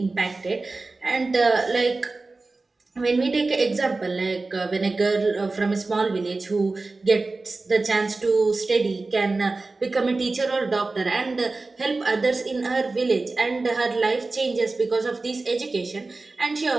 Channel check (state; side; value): quieter; left; 3.5 dB